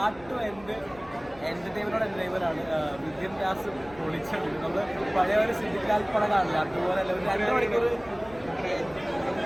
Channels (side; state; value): left; noise; rumble, 22 dB below the sound